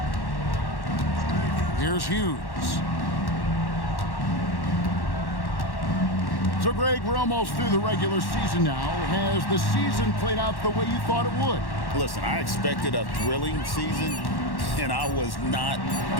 Here's Hughes. So, Greg, we're almost through the regular season now. Has the season played out the way you thought it would? Listen, I expected a thrilling season, and I was not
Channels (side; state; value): right; late; 1.1 ms